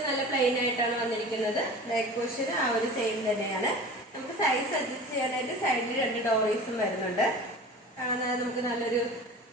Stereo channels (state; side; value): normal; both; correlation 0.38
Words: നല്ല പ്ലെയിൻ ആയിട്ടാണ് വന്നിരിക്കുന്നത്. ബാക്ക് പോർഷൻ ആ ഒരു സെയിം തന്നെയാണ്. നമുക്ക് സൈസ് അഡ്ജസ്റ്റ് ചെയ്യാനായിട്ട് സൈഡിൽ 2 ഡോറീസും വരുന്നുണ്ട്. നമുക്ക് നല്ലൊരു